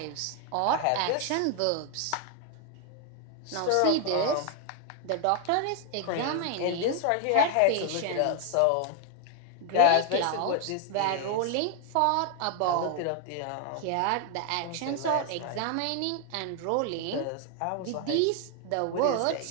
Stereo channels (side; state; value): both; different; correlation 0.00